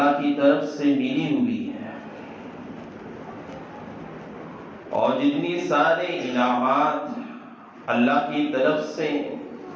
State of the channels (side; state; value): both; identical; correlation 1.00